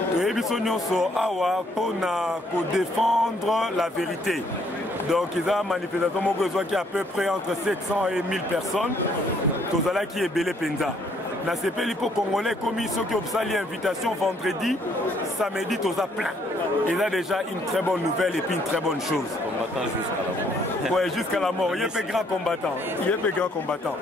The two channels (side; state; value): both; normal; correlation 0.67